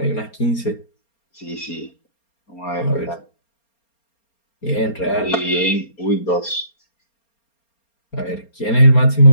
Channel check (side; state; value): right; late; 4.3 ms